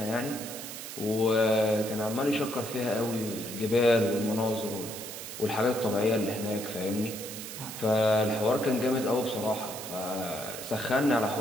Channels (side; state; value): right; noise; hiss, 9 dB below the sound